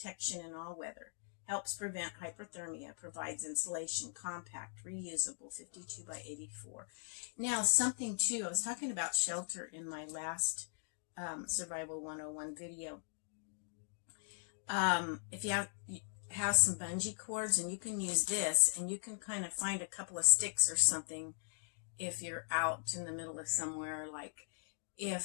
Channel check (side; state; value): right; silent; digital silence